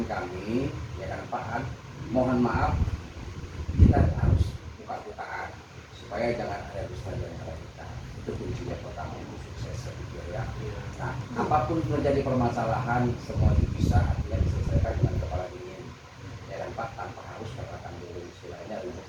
kami, ya kan Pak, mohon maaf, kita harus buka-bukaan supaya jangan ada dusta di antara kita. Itu kuncinya pertama untuk sukses, saya pikir ya. Nah, apapun terjadi permasalahan, semua bisa artinya diselesaikan dengan kepala dingin, ya kan Pak, tanpa harus katakan dulu istilahnya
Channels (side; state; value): both; identical; correlation 1.00